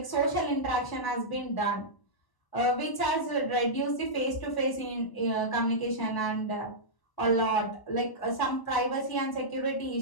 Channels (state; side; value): late; right; 1.0 ms